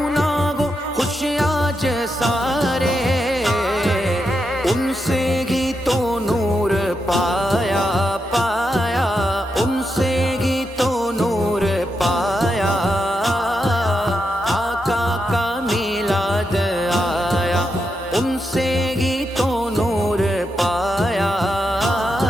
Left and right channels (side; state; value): both; normal; correlation 0.85